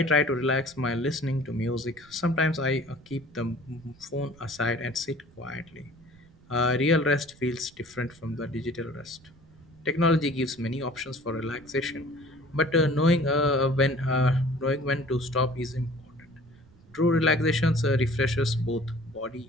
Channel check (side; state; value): right; noise; rumble, 26 dB below the sound